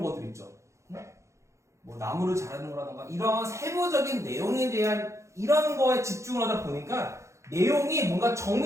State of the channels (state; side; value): late; left; 0.14 ms